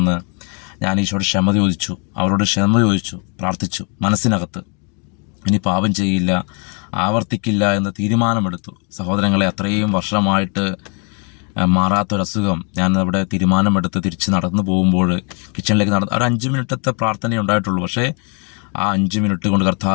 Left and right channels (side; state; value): right; quieter; 36.9 dB